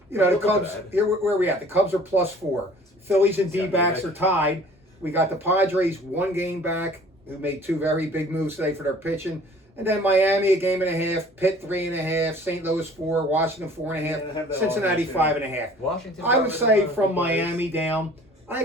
the Look at Cubs. that. Here, where are we at? The Cubs are +4. Phillies and Yeah, D-backs right. are tied. We got the Padres 1 game back, who made 2 very big moves today for their pitching. And then Miami 1.5 games, Pitt 3.5, St. Louis 4, Washington 4.5, Cincinnati 5.5. Washington. I would say from Miami down, I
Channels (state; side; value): normal; both; correlation 0.50